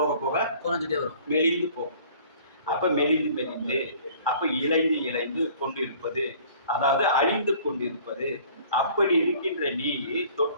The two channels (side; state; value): both; inverted; correlation -0.51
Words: போக குறைஞ்சிட்டே வரும், மெலிந்து போகும். அப்ப மெலிந்து மெலிந்து, அப்ப இழைந்து இழைந்து கொண்டிருப்பது, அதாவது அழிந்து கொண்டிருப்பது. அப்படி இருக்கின்ற நீ